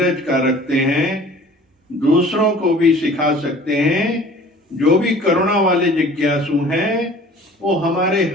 का रखते हैं, दूसरों को भी सिखा सकते हैं। जो भी करुणा वाले जिज्ञासु हैं वो हमारे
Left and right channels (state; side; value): normal; both; correlation 0.47